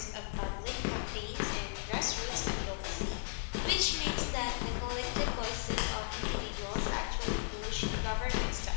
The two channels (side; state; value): right; silent; 54 dB below the other